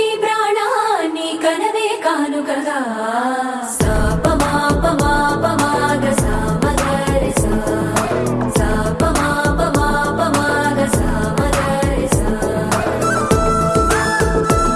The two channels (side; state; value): both; identical; correlation 1.00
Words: ప్రాణాన్ని కనవే కానుకగా